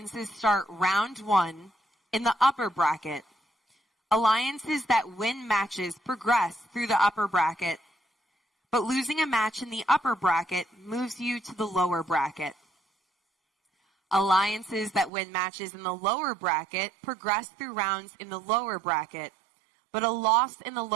start round 1 in the upper bracket. Alliances that win matches progress through the upper bracket, but losing a match in the upper bracket moves you to the lower bracket. Alliances that win matches in the lower bracket progress through rounds in the lower bracket, but a loss in the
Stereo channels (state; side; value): drops out; left; at 15.1 s